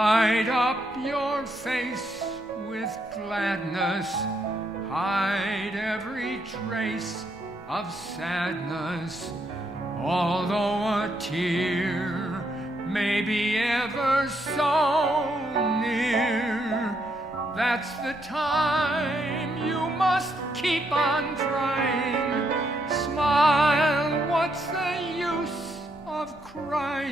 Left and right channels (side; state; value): both; normal; correlation 0.76